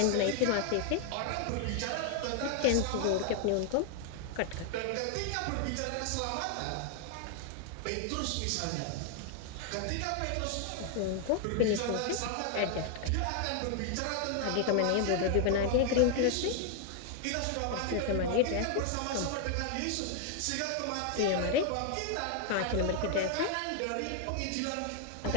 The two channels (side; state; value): both; different; correlation 0.00